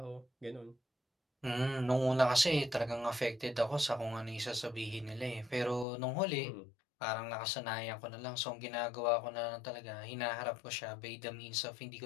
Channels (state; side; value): drops out; right; at 5.9 s